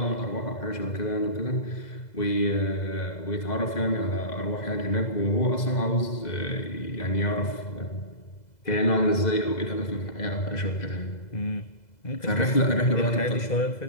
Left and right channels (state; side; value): late; right; 2.0 ms